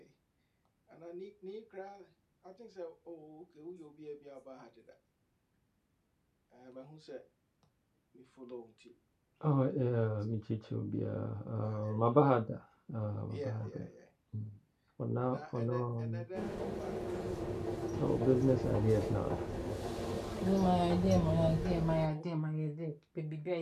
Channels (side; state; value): both; identical; correlation 1.00